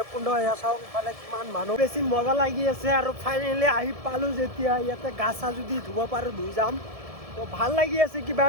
এয়া চাওক, ইফালে কিমান মানুহ, বেছি মজা লাগি আছে। আৰু ফাইনেলি আহি পালোঁ যেতিয়া, ইয়াতে গা চা যদি ধুব পাৰোঁ ধুই যাম। তো ভাল লাগি আছে কিবা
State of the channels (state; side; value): late; left; 1.7 ms